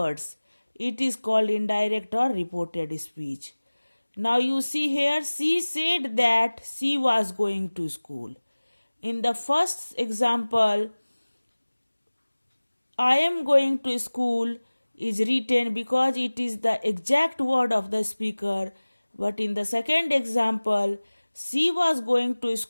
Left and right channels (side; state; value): both; inverted; correlation -1.00